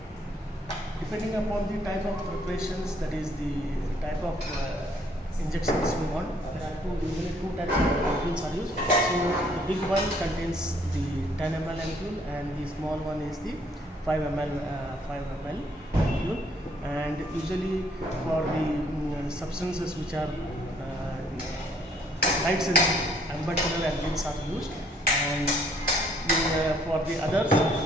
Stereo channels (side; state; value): both; normal; correlation 0.64